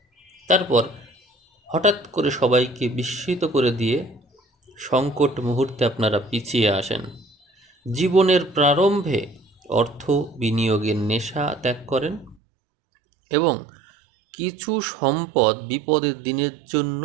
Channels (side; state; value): left; drops out; at 12.4 s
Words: তারপর হঠাৎ করে সবাইকে বিস্মিত করে দিয়ে সংকট মুহূর্তে আপনারা পিছিয়ে আসেন। জীবনের প্রারম্ভে অর্থ বিনিয়োগের নেশা ত্যাগ করেন এবং কিছু সম্পদ বিপদের দিনের জন্য